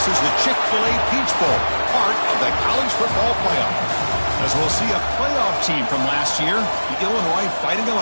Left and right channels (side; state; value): both; inverted; correlation -1.00